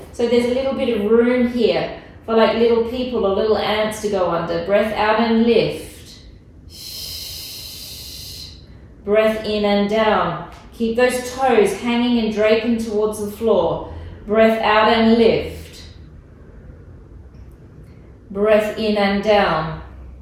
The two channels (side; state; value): both; identical; correlation 1.00